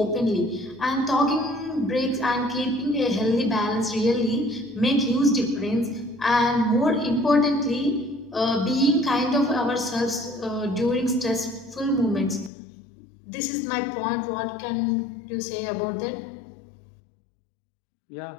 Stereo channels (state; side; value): drops out; right; at 12.5 s